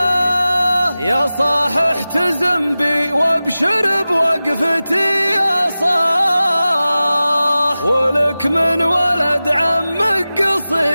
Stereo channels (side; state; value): both; inverted; correlation -0.96